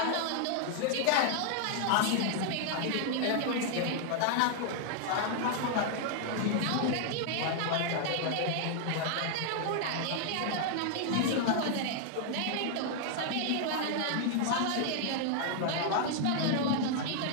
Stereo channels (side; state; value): both; different; correlation 0.00